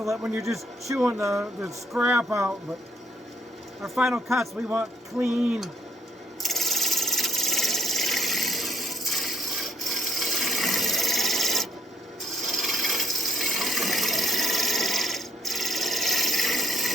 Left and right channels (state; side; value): normal; both; correlation 0.68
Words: it when you're just chewing the scrap out, but our final cuts we want clean.